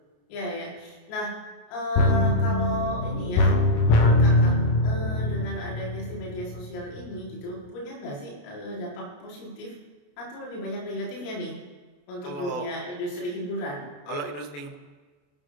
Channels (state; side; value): late; right; 28 ms